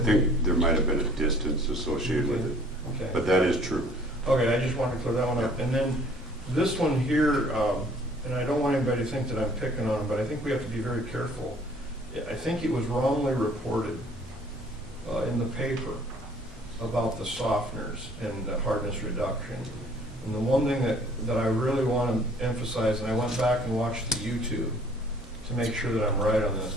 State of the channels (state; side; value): normal; both; correlation 0.56